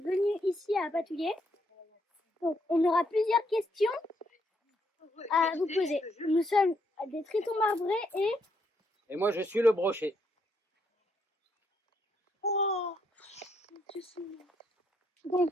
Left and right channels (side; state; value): both; normal; correlation 0.75